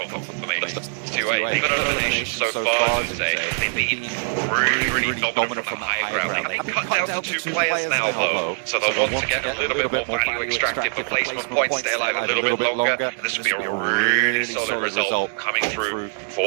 confirmation. 2-8. They've got elimination so far today. They've been really dominant from the high ground. They cut down to 2 players now though, so they'll want to get a little bit more value extracted for placement points, stay alive a little bit longer, and this will be a really solid result coming through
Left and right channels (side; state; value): left; silent; digital silence